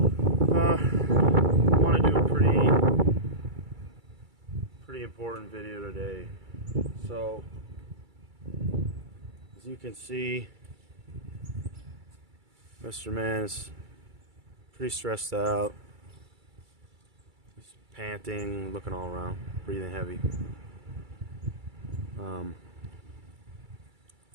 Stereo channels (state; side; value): late; left; 2.3 ms